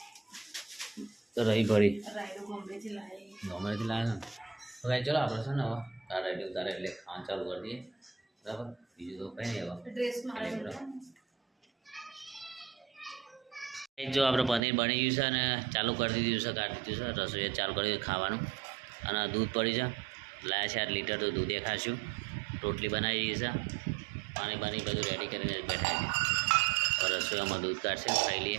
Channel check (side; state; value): left; drops out; at 14.6 s